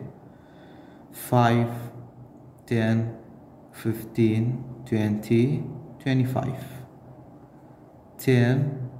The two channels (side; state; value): both; identical; correlation 1.00